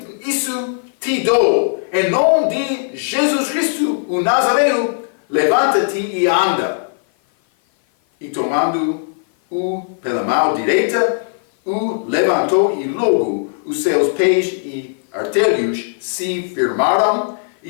isso te dou. Em nome de Jesus Cristo, o Nazareno, levanta-te e anda. E tomando-o pela mão direita, o levantou, e logo os seus pés e artelhos se firmaram,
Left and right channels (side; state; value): right; silent; 56 dB below the other